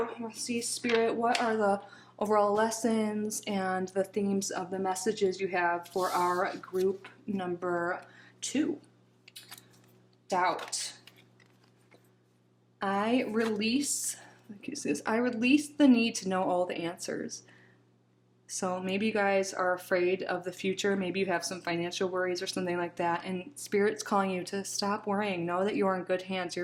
we'll see, Spirit, what are the overall lessons and the themes of the messages you have for our group number 2? Doubt. I release the need to know all the answers. So maybe you guys are afraid of the future. Maybe you have some financial worries or something like that. And Spirit's calling you to stop worrying. Know that you're in good hands.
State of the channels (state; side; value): identical; both; correlation 1.00